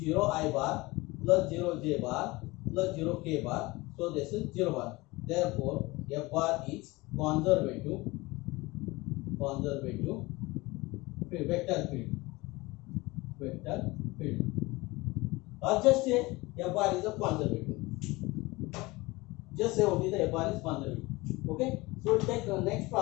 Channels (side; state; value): right; quieter; 22.0 dB